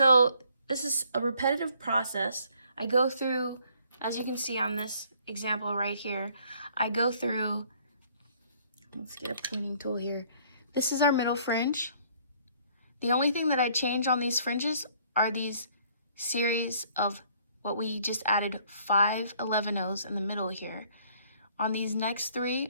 this is a repetitive process. I go through, as you can see on this example right here, I go through, let's get a pruning tool here. This is our middle fringe. The only thing that I change on these fringes are these series of what we just added 5 11-0s in the middle here. On these next 3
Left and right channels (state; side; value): inverted; both; correlation -0.61